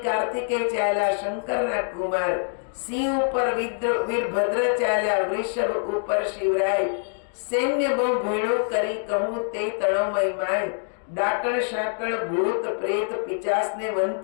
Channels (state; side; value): silent; right; 62 dB below the other